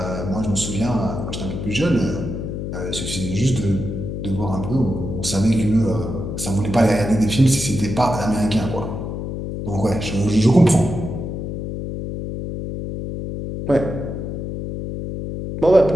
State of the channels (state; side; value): noise; left; hum, 5 dB below the sound